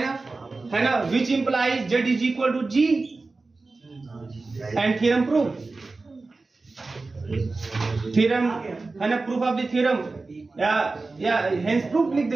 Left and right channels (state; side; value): quieter; left; 3.6 dB